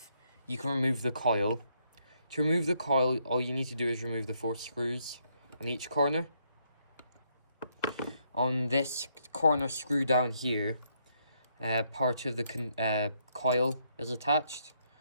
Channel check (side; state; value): both; inverted; correlation -0.74